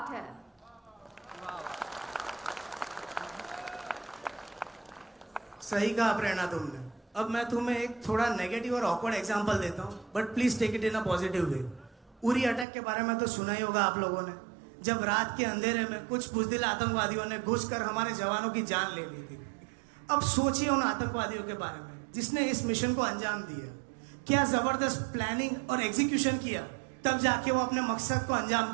है. सही कहा प्रेरणा तुमने. अब मैं तुम्हें एक थोड़ा नेगेटिव और ऑकवर्ड एग्जांपल देता हूँ, बट प्लीज टेक इट इन अ पॉजिटिव वे। उरी अटैक के बारे में तो सुना ही होगा आप लोगों ने, जब रात के अंधेरे में कुछ बुजदिल आतंकवादियों ने घुसकर हमारे जवानों की जान ले ली थी। अब सोचिए उन आतंकवादियों के बारे में जिसने इस मिशन को अंजाम दिया, क्या जबरदस्त प्लानिंग और एग्जीक्यूशन किया, तब जाके वो अपने मकसद को अंजाम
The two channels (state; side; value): drops out; left; at 12.7 s